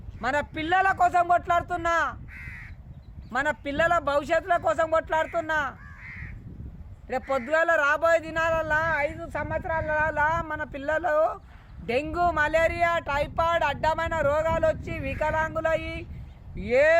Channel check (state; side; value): identical; both; correlation 1.00